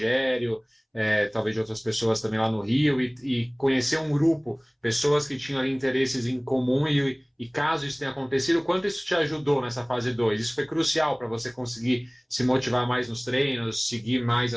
talvez de outras pessoas também lá no Rio, e conhecer um grupo, pessoas que tinham ali interesses em comum, e caso isso tenha acontecido, quanto isso te ajudou nessa fase 2? Isso foi crucial para você conseguir se motivar mais nos treinos, seguir mais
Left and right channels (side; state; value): both; identical; correlation 1.00